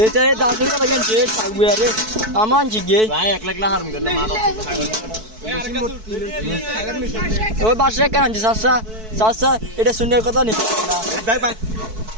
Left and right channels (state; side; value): late; left; 4.6 ms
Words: এটা 10 টাকা লাগেন যে থাকবে আরে আমান জিগে ভাই 1 লাখ হারুম কেন মারা ওই বাসে কেন যে সাসা এটা সুন্দর কথা নেই ভাই ভাই